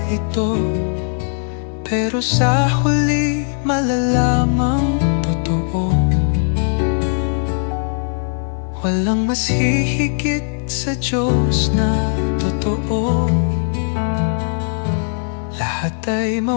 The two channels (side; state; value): right; silent; 64 dB below the other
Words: ito. Pero sa huli malalamang totoo. Walang mas hihigit sa Diyos na totoo. Lahat ay